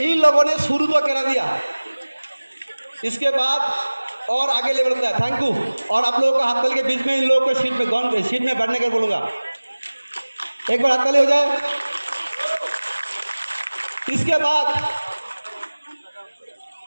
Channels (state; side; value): inverted; both; correlation -1.00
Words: इन लोगों ने शुरू तो करा दिया, इसके बाद और आगे लेवल होता है। Thank you. और आप लोगों को हाथताली के बीच में इन लोगों को सीट में बैठने के बोलूँगा, एक बार हाथताली हो जाए। इसके बाद